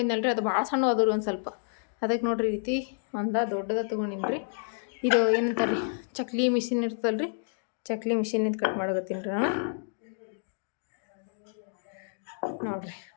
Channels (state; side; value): silent; right; digital silence